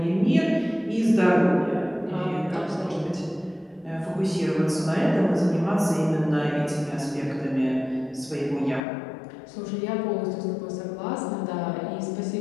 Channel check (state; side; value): drops out; right; at 8.8 s